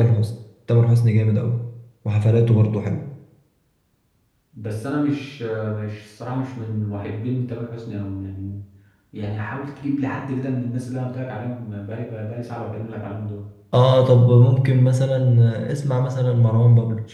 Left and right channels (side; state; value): both; identical; correlation 1.00